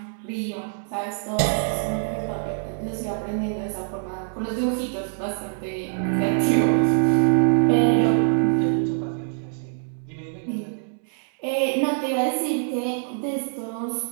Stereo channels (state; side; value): silent; left; 62 dB below the other